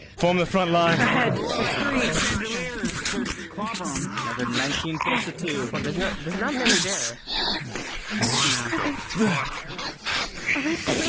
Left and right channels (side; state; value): both; identical; correlation 1.00